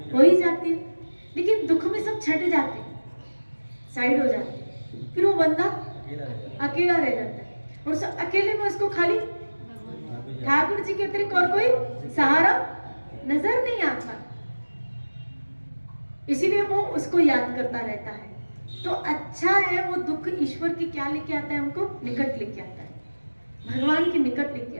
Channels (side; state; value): both; inverted; correlation -1.00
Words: हो ही जाती है, लेकिन दुख में सब छट जाते हैं, साइड हो जाते हैं, फिर वो बंदा अकेला रह जाता है और उस अकेले में उसको खाली ठाकुर जी के अतिरिक्त और कोई सहारा नजर नहीं आता, इसीलिए वो उसको याद करता रहता है। तो अच्छा है वो दुख ईश्वर की क्या लेके आता है, हमको निकट लेके आता है, भगवान के निकट लेके